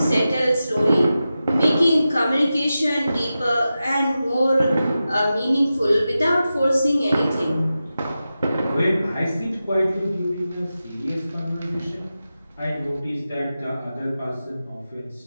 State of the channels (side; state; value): both; inverted; correlation -0.92